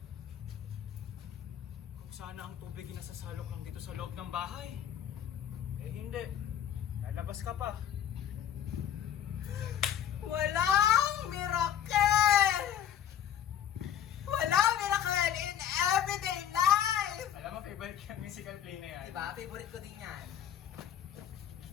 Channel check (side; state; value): right; quieter; 10.0 dB